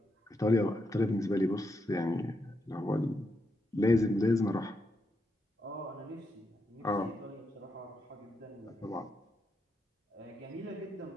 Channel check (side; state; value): both; normal; correlation 0.82